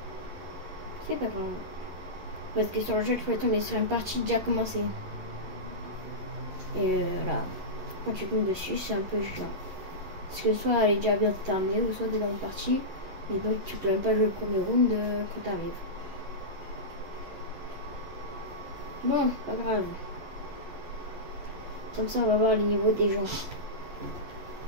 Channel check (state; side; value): late; left; 11 ms